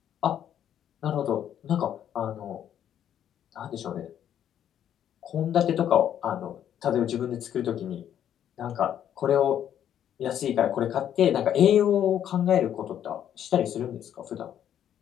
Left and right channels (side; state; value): right; quieter; 10.1 dB